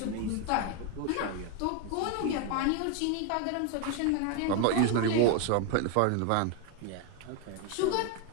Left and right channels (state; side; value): different; both; correlation 0.01